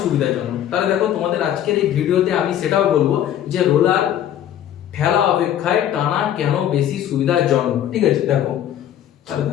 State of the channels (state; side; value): quieter; right; 10.9 dB